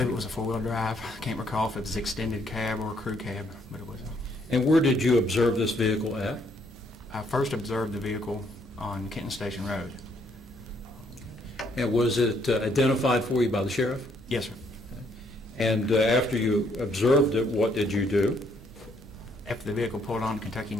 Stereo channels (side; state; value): both; normal; correlation 0.69